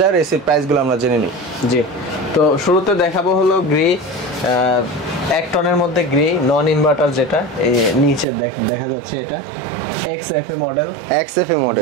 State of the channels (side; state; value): left; drops out; at 8.2 s